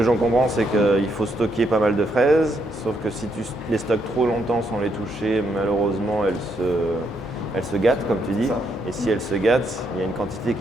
j'en comprends, c'est qu'il faut stocker pas mal de fraises, sauf que si tu les stockes trop longtemps sans les toucher, malheureusement, elles se gâtent, comme tu dis. Et si elles se gâtent, il y a une quantité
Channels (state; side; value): normal; both; correlation 0.76